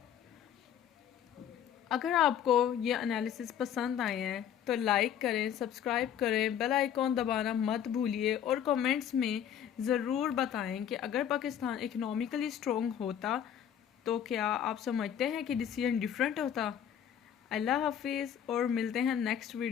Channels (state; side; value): quieter; right; 9.4 dB